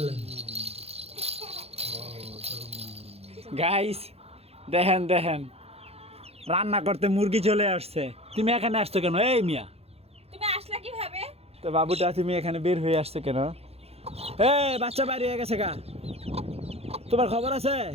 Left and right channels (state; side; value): late; left; 0.29 ms